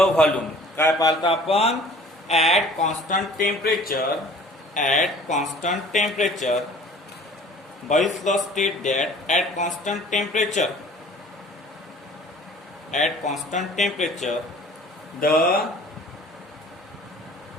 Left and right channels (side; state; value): both; normal; correlation 0.49